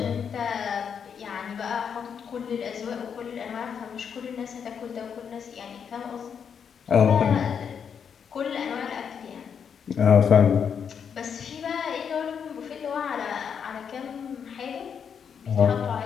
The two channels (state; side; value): quieter; right; 7.2 dB